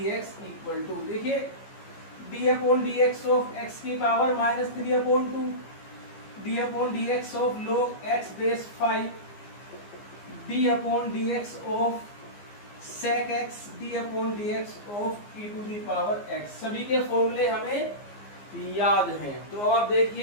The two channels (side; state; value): right; late; 15 ms